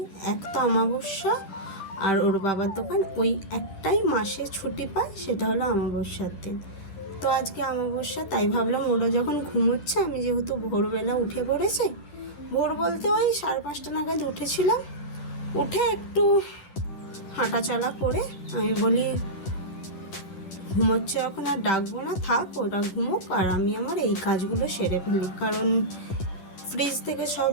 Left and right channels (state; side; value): late; right; 10 ms